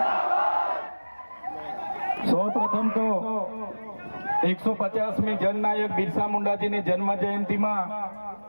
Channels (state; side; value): inverted; both; correlation -1.00